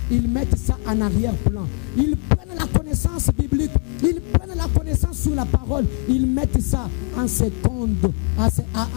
ils mettent ça en arrière-plan. Ils prennent la connaissance biblique, ils prennent la connaissance sur la parole, ils mettent ça en seconde,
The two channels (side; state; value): right; quieter; 34.9 dB